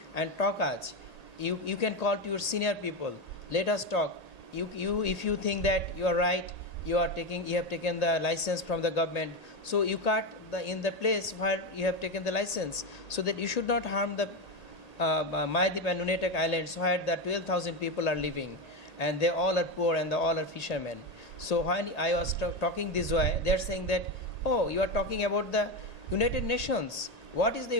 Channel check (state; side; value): late; right; 1.8 ms